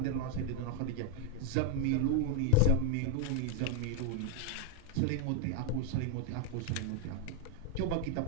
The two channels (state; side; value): different; both; correlation 0.01